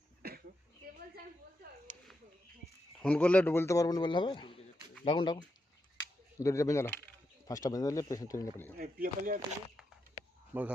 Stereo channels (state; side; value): normal; both; correlation 0.84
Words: ফোন করলে বলতে পারবেন, বললে হবে। ডাকুন ডাকুন, দড়িটা বেঁধে দাও, ফার্স্টটা বেঁধে দিলে পেশেন্ট ট্রেনে পেলে যাবে।